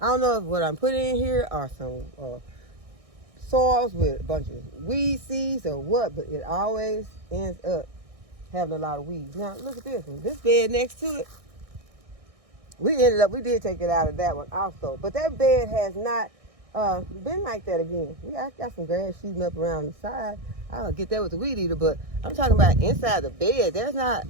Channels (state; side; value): late; left; 1.6 ms